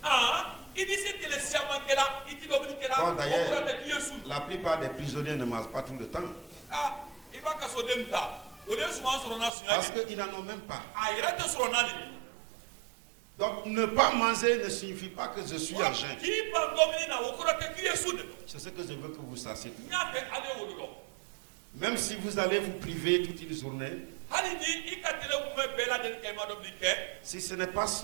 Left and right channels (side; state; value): left; drops out; at 9.5 s